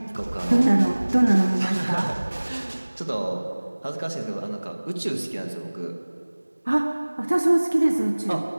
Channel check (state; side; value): inverted; both; correlation -1.00